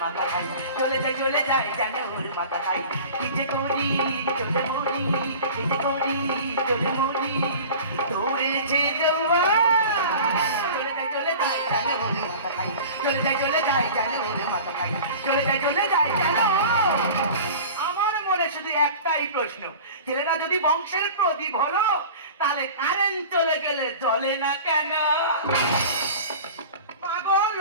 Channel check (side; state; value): both; inverted; correlation -0.39